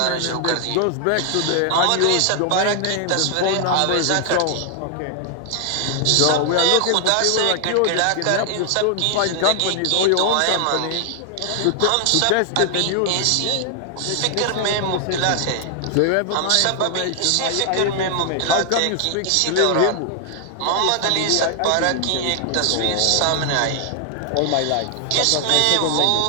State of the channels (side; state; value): both; different; correlation 0.00